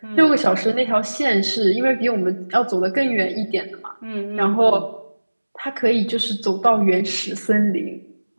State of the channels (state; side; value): inverted; both; correlation -1.00